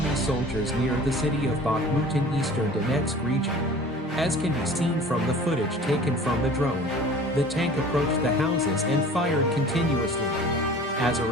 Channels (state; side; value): normal; both; correlation 0.44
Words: soldiers near the city of Bakhmut in eastern Donetsk region. As can be seen from the footage taken from the drone, the tank approached the houses and fired continuously. As a